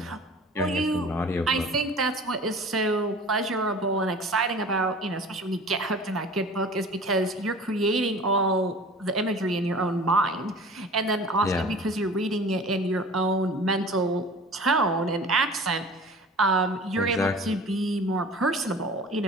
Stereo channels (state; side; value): normal; both; correlation 0.42